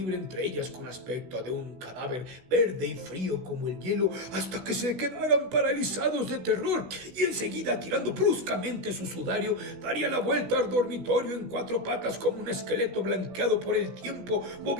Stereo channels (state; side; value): late; left; 16 ms